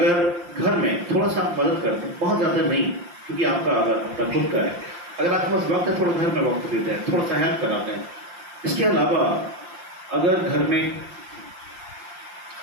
घर में थोड़ा सा मदद करते हैं, बहुत ज्यादा नहीं, क्योंकि आपका अगर अपना खुद का है, अगर आपके पास वक्त है थोड़ा घर में वक्त देते हैं, थोड़ा सा हेल्प कराते हैं। इसके अलावा अगर घर में,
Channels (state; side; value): late; left; 5.7 ms